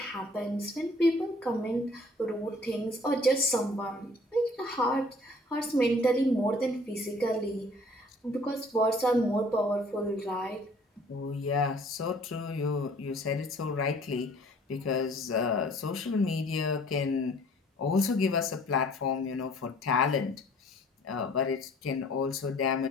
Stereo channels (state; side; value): normal; both; correlation 0.55